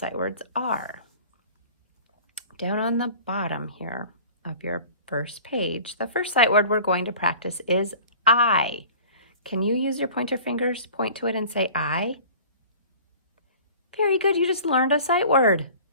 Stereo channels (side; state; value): both; inverted; correlation -0.44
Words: words are. Down on the bottom here of your first page, the first sight word we're going to practice is I. Can you use your pointer fingers, point to it and say I? Very good, you just learned a sight word.